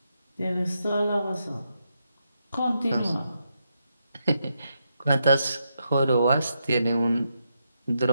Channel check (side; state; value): both; inverted; correlation -0.82